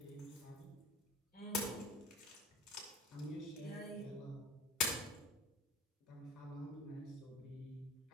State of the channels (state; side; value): normal; both; correlation 0.38